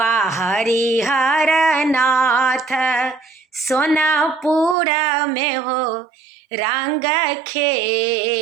हरिहर नाथ सोनापुर में हो रंग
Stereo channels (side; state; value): left; drops out; at 4.8 s